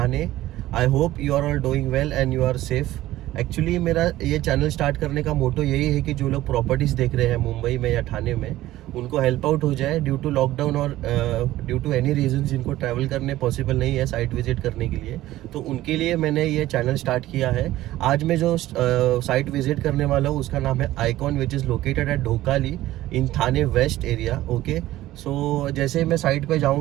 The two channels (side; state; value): left; quieter; 15.5 dB